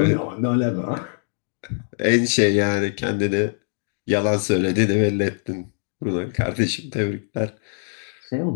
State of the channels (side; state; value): right; silent; digital silence